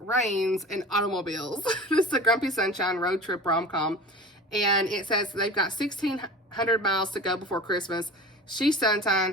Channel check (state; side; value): normal; both; correlation 0.36